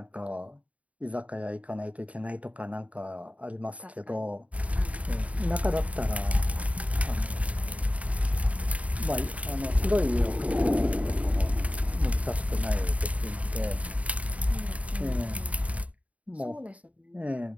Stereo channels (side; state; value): left; late; 0.067 ms